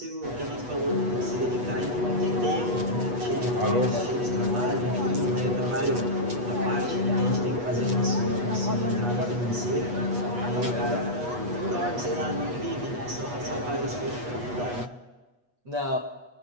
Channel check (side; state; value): left; late; 8.2 ms